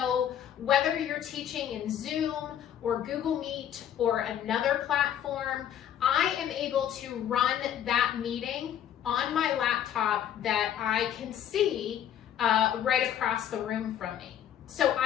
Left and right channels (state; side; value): quieter; right; 10.1 dB